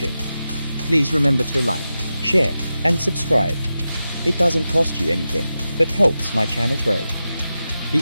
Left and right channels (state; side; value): inverted; both; correlation -0.92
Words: Please remember to like, share, and subscribe. It doesn't cost you anything, but helps my channel grow.